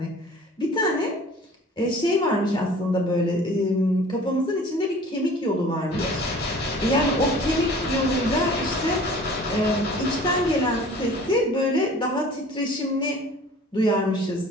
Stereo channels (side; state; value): both; normal; correlation 0.46